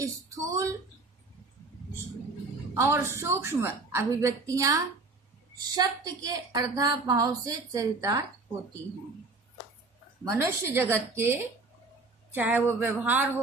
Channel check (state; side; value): quieter; left; 3.6 dB